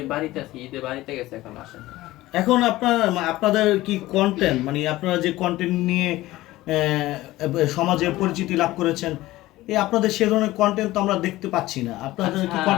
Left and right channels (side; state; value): right; quieter; 17.3 dB